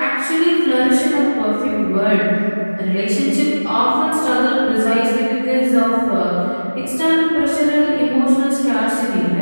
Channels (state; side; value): inverted; both; correlation -1.00